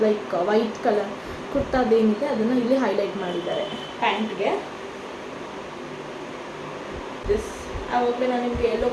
ಲೈಕ್ ವೈಟ್ ಕಲರ್ ಕುರ್ತಾದೇನಿದೆ ಅದನ್ನು ಇಲ್ಲಿ ಹೈಲೈಟ್ ಮಾಡಿದ್ದಾರೆ ಪ್ಯಾಂಟ್ಗೆ. ದಿಸ್ ಆವಾಗಲೇ ನಾನು ನಿಮಗೆ ಯೆಲ್ಲೋ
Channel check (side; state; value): both; identical; correlation 1.00